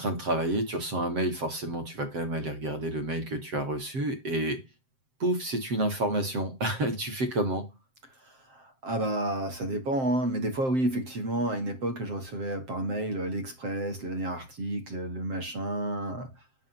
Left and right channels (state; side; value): late; left; 7.6 ms